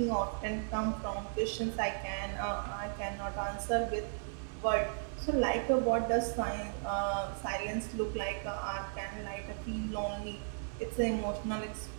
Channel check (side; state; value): left; silent; 54 dB below the other